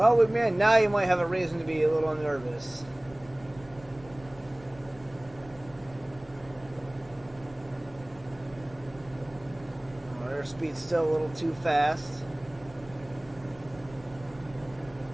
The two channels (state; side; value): noise; right; rumble, 22 dB below the sound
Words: man, now you might have a reason to be a little nervous. Speed's still a little too fast.